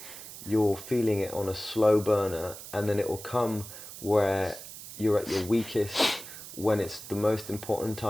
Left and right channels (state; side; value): noise; right; hiss, 13 dB below the sound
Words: you're feeling it on a slow burner, and then it will come where you're at your weakest, when it's the most important